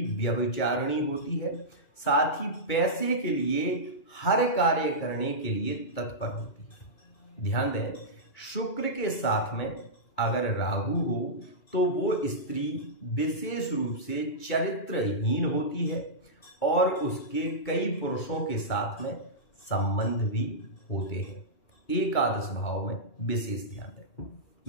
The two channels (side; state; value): right; late; 2.2 ms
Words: व्यभिचारिणी होती है, साथ ही पैसे के लिए हर कार्य करने के लिए तत्पर होती है। ध्यान दें, शुक्र के साथ में अगर राहु हो तो वो स्त्री विशेष रूप से चरित्रहीन होती है और उसके कई पुरुषों के साथ में संबंध भी होते हैं। एकादश भाव में विशेष ध्यान दें।